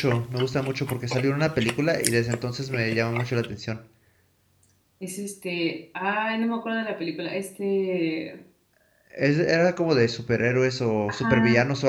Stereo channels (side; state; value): both; identical; correlation 1.00